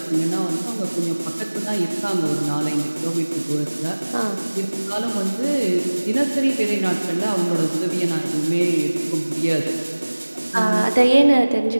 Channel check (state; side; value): inverted; both; correlation -1.00